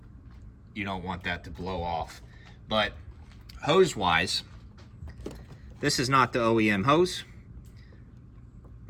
you don't want that to blow off. But hose wise, this is not the OEM hose.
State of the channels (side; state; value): both; identical; correlation 1.00